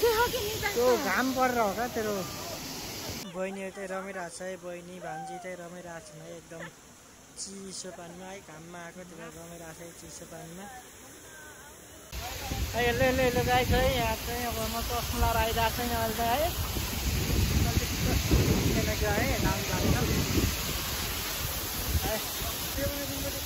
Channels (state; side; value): identical; both; correlation 1.00